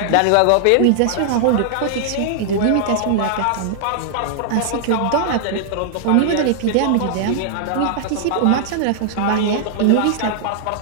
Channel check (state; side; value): different; both; correlation -0.01